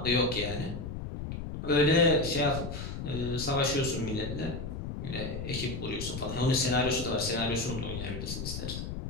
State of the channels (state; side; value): noise; left; rumble, 6 dB below the sound